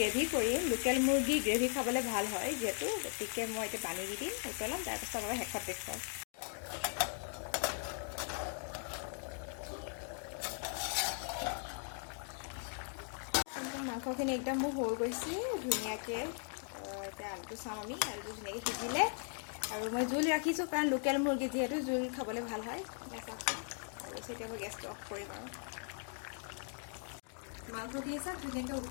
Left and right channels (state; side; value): silent; right; 52 dB below the other